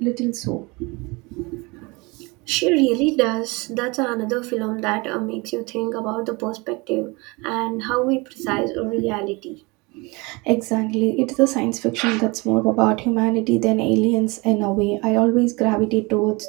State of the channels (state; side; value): quieter; left; 26.0 dB